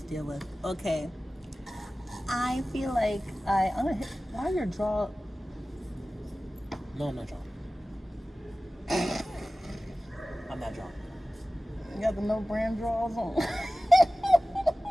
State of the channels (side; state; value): both; normal; correlation 0.97